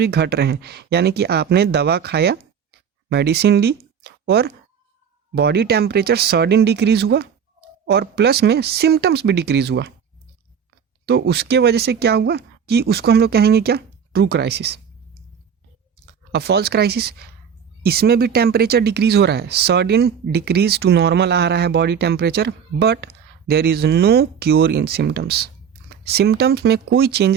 घट रहे हैं। यानी कि आपने दवा खाया, मेडिसिन ली और बॉडी टेम्परेचर सडन डिक्रीज हुआ और प्लस में सिम्टम्स भी डिक्रीज हुआ, तो उसके वजह से क्या हुआ कि उसको हम लोग कहेंगे क्या, ट्रू क्राइसिस। अब फॉल्स क्राइसिस, इसमें भी टेम्परेचर डिक्रीज हो रहा है, सडन डिक्रीज टू नॉर्मल आ रहा है body temperature, but there is no cure in symptoms. Symptoms में कोई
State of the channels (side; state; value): left; quieter; 7.5 dB